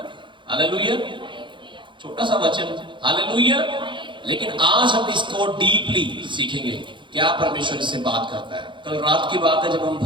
हालेलुया। छोटा सा वचन। हालेलुया। लेकिन आज हम इसको डीपली सीखेंगे, क्या परमेश्वर इससे बात करता है। कल रात की बात है, जब हम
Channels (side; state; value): left; late; 0.23 ms